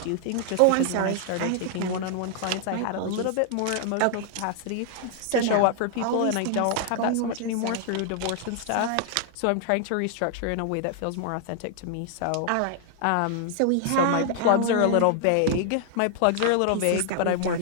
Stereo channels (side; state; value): both; different; correlation 0.00